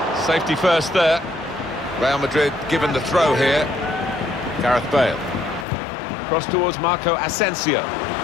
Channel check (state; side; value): drops out; right; at 5.7 s